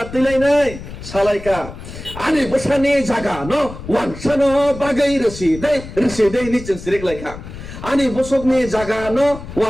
তুলাইনাই সালাইকা আনি বসানি জাগা ন ওয়ানসানো বাগৈ রসি দে নিচেন সিরিক লাইখা ani bosokni jaga no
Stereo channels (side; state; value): left; noise; rumble, 12 dB below the sound